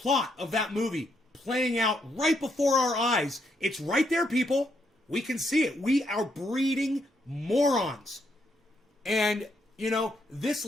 of that movie playing out right before our eyes. It's right there, people. We can see it. We are breeding morons. And, you know, this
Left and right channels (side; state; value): both; normal; correlation 0.76